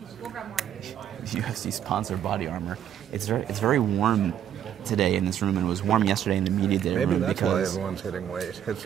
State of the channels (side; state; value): left; quieter; 10.0 dB